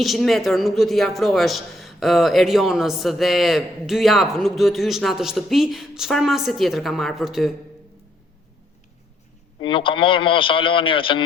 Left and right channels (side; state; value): both; normal; correlation 0.71